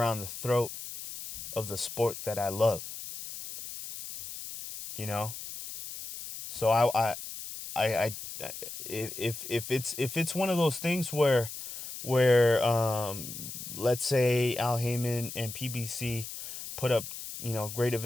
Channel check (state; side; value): noise; left; hiss, 10 dB below the sound